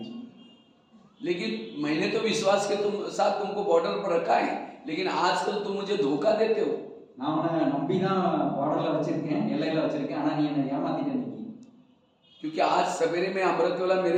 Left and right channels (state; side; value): identical; both; correlation 1.00